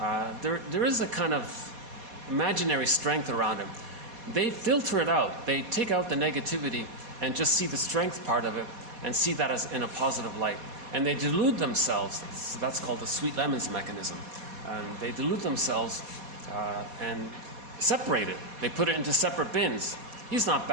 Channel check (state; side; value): late; left; 4.2 ms